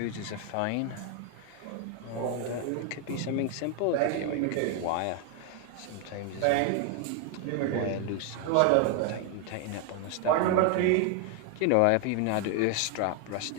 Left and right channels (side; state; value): both; different; correlation 0.00